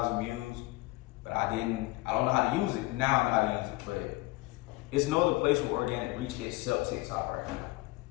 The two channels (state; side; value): quieter; right; 21.7 dB